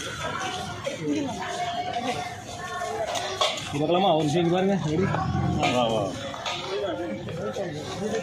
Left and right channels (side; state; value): both; identical; correlation 1.00